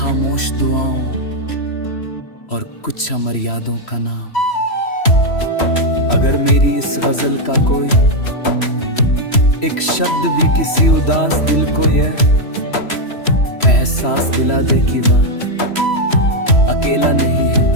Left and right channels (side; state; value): right; late; 3.1 ms